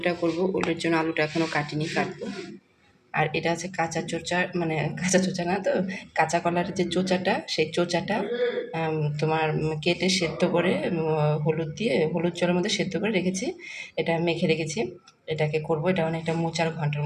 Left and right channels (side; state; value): both; identical; correlation 1.00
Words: করব। ওলের জন্য আলুটা এখনও কাটিনি, কাটবো। আর এটা আছে কাঁচা চোচা, মানে কাঁচা চোচা না তো, কাঁচা কলার যে চোচাটা, সেই চোচাটা তোমার কেটে সেদ্ধ করে হলুদ দিয়ে, হলুদ জলের মধ্যে সেদ্ধ করে রেখেছি। এটা মেখে রেখেছি, এটাকে করব। এটা অনেকটা মোচার ঘন্টার